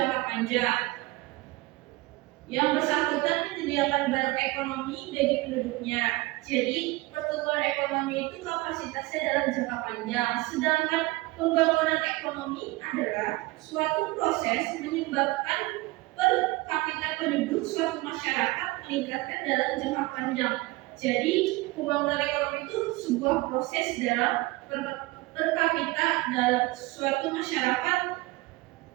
panjang yang bersangkutan menyediakan barang ekonomi bagi penduduknya. Jadi pertumbuhan ekonomi itu kapasitasnya dalam jangka panjang, sedangkan pembangunan ekonomi adalah suatu proses menyebabkan per kapita penduduk suatu masyarakat meningkatkan dalam jangka panjang. Jadi pembangunan ekonomi itu sebuah proses dalam per kapita dalam suatu masyarakat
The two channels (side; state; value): left; quieter; 21.3 dB